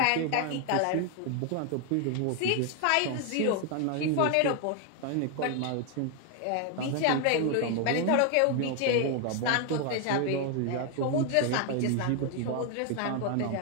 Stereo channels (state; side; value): different; both; correlation 0.01